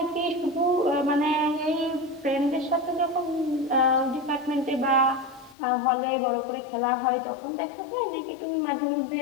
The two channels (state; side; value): drops out; right; at 5.6 s